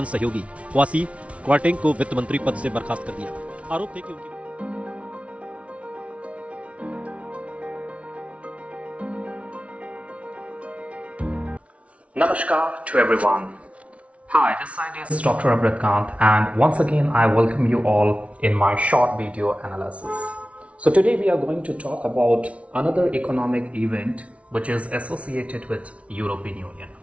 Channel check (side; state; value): left; late; 0.063 ms